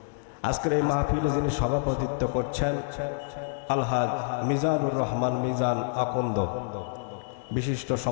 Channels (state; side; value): silent; right; digital silence